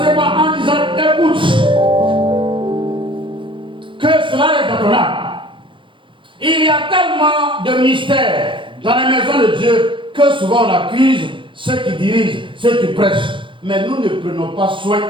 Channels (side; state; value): left; late; 0.24 ms